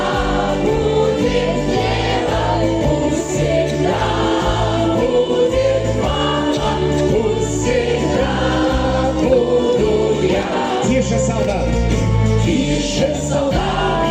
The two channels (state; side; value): identical; both; correlation 1.00